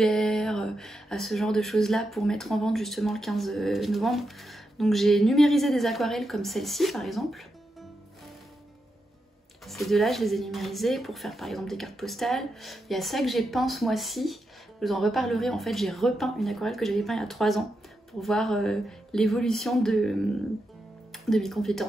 à ce genre de choses là pour mettre en vente justement le 15 novembre. Donc j'ai numérisé des aquarelles comme celle-ci par exemple. Ces deux-là je les ai numérisées pour faire par exemple des cartes postales. Il y a ça que j'ai peint ce mois-ci, je vous en reparlerai. En fait j'ai repeint une aquarelle que j'avais peint il y a 3 ans pour voir l'évolution de mes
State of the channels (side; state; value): both; normal; correlation 0.86